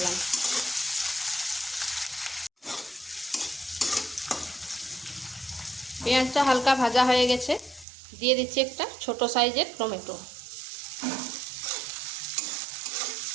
পেঁয়াজটা হালকা ভাজা হয়ে গেছে, দিয়ে দিচ্ছি একটা ছোট সাইজের টমেটো।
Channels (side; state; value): left; drops out; at 7.9 s